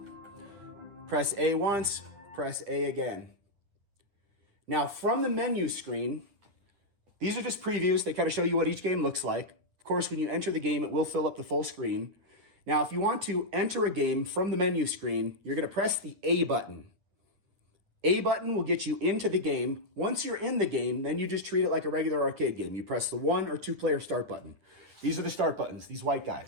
Press A once, press A again. Now from the menu screen, these are just previews. They kind of show you what each game looks like. Of course, when you enter the game, it will fill up the full screen. Now, if you want to enter a game from the menu screen, you're going to press the A button. A button will get you into the game. Once you're in the game, then you just treat it like a regular arcade game. You press the 1 or 2 player start button. These are the start buttons, these white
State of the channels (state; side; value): late; left; 10 ms